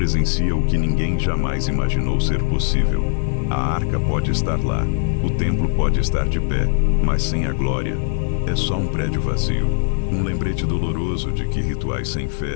o que ninguém jamais imaginou ser possível. A arca pode estar lá, o templo pode estar de pé, mas sem a glória, é só um prédio vazio. Um lembrete doloroso de que rituais sem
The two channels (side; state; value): right; silent; digital silence